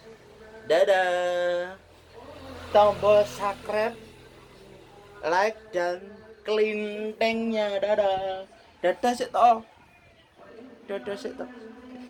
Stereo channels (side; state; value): both; identical; correlation 1.00